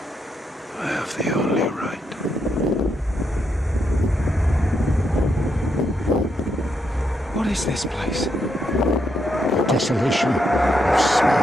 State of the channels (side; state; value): both; normal; correlation 0.80